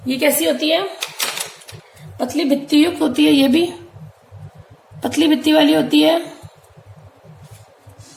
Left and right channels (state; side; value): identical; both; correlation 1.00